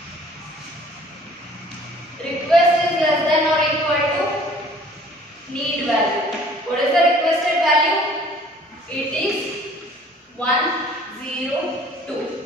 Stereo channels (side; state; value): both; normal; correlation 0.53